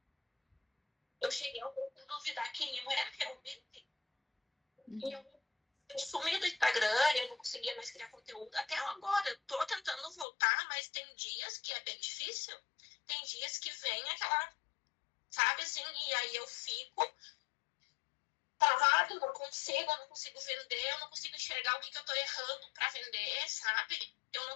Eu cheguei ao ponto de duvidar quem eu era realmente. E eu sumi do Instagram, eu não conseguia mais criar conteúdo. Até agora, eu tô tentando voltar, mas tem dias que é bem difícil. Tem dias que vem aquela, sabe assim, e aí eu fico travado, eu não consigo vender, eu não consigo enxergar o que eu tô errando pra vender, sabe? Eu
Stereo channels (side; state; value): right; drops out; at 10.2 s